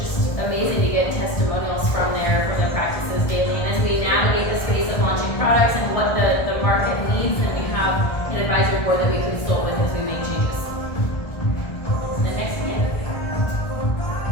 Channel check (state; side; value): late; right; 1.6 ms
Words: amazing to get testimonials from their practices daily. And as we navigate the space of launching products and what the market needs, then we have an advisory board that we consult with as we make changes. The next slide.